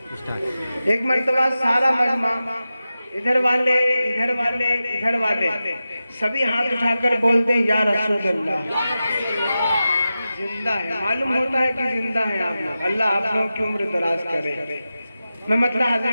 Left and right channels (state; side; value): inverted; both; correlation -0.93